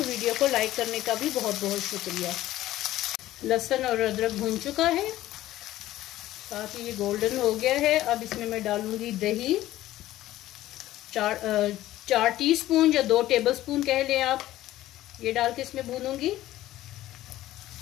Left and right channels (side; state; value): right; quieter; 14.8 dB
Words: को लाइक करने का भी बहुत बहुत शुक्रिया। लहसुन और अदरक भून चुका है, साथ ही ये गोल्डन हो गया है। अब इसमें मैं डालूंगी दही 4 टीस्पून या 2 टेबलस्पून कह लें आप, ये डाल के इसमें भूनूंगी।